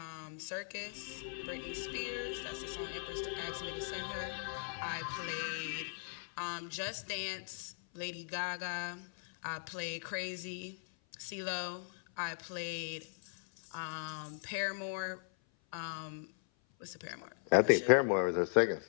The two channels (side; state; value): right; silent; 52 dB below the other